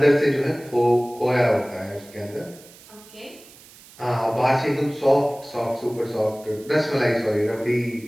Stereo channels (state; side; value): noise; right; hiss, 22 dB below the sound